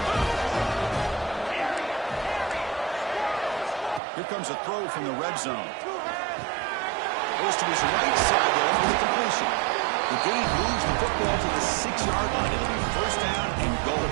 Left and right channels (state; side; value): drops out; left; at 4.0 s